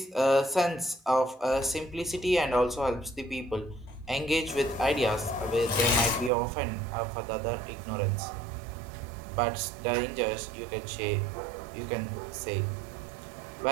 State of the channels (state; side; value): drops out; left; at 6.3 s